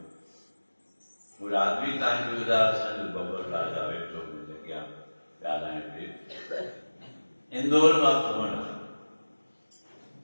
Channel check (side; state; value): both; inverted; correlation -1.00